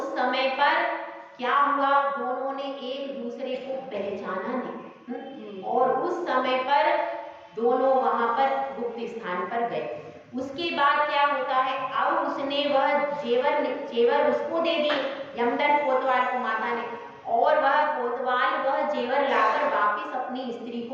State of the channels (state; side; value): identical; both; correlation 1.00